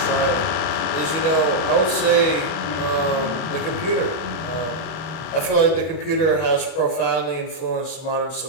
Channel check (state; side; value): late; right; 31 ms